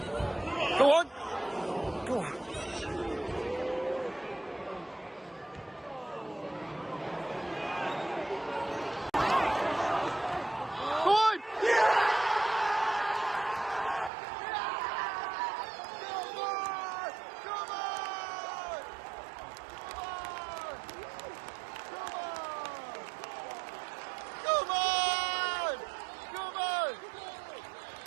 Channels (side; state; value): left; drops out; at 14.1 s